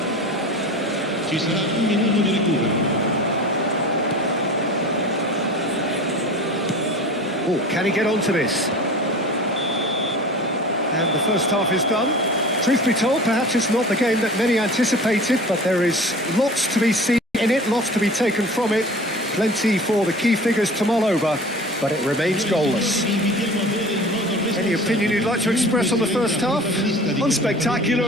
Ci sarà un minuto di recupero. Oh, can he get onto this? And the first half is done. Truth be told, perhaps it's not the game that many anticipated, but there is lots to be seen in it, lots to be taken from it. Plenty for the key figures to mull over, but it remains goalless. Any opinion you'd like to express on the first half?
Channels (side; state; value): both; normal; correlation 0.39